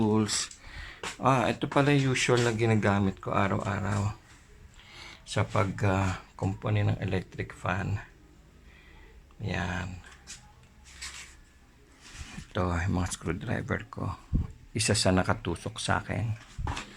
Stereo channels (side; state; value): both; identical; correlation 1.00